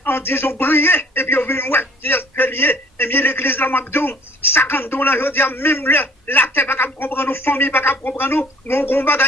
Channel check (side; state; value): both; normal; correlation 0.54